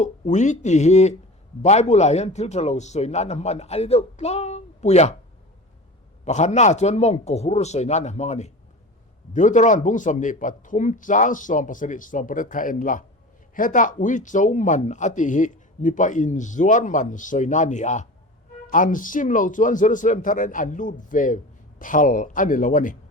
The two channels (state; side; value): normal; both; correlation 0.33